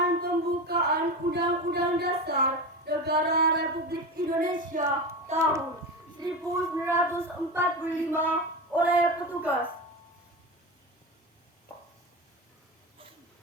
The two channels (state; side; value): normal; both; correlation 0.23